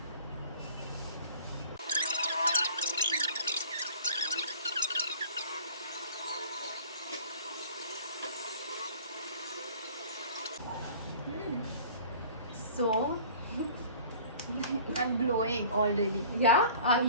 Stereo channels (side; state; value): both; inverted; correlation -0.47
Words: So I'm glowing already. yeah, are